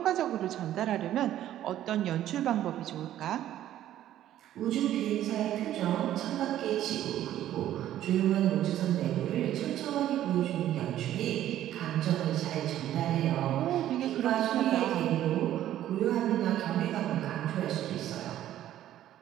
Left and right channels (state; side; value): quieter; left; 12.4 dB